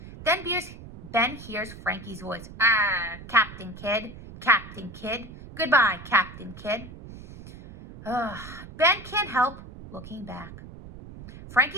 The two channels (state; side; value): noise; right; rumble, 15 dB below the sound